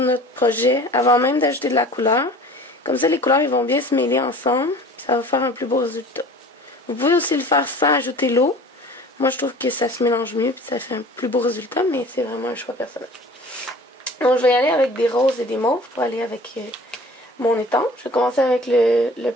projet avant même d'ajouter de la couleur. Comme ça, les couleurs ils vont bien se mêler ensemble. Ça va faire un plus beau résultat. Vous pouvez aussi le faire sans ajouter l'eau. Moi, je trouve que ça se mélange mieux et ça fait un plus beau résultat, mais c'est vraiment un choix personnel. Donc, je vais y aller avec des roses et des mauves pour aller avec mon étang. Je vais commencer avec le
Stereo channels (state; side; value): normal; both; correlation 0.45